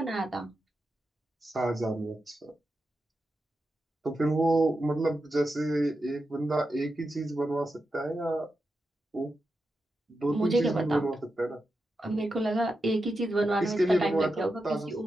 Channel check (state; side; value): normal; both; correlation 0.88